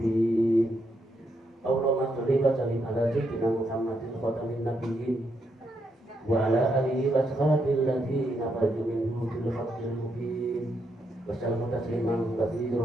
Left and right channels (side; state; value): both; normal; correlation 0.79